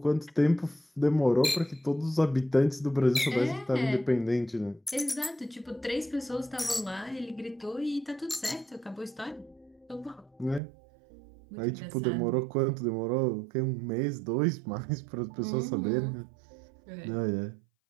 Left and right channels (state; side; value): drops out; left; at 10.6 s